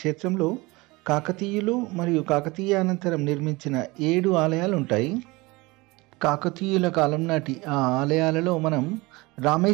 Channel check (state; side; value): quieter; left; 23.2 dB